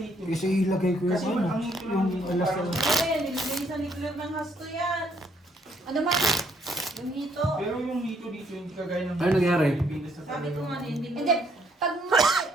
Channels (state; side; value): normal; both; correlation 0.69